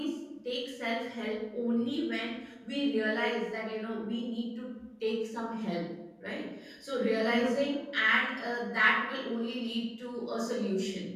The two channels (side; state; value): both; identical; correlation 1.00